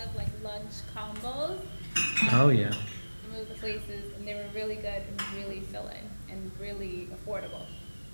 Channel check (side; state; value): both; inverted; correlation -1.00